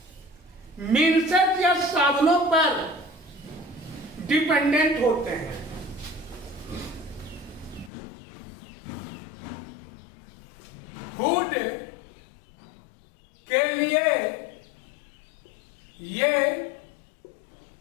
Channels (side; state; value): right; drops out; at 7.9 s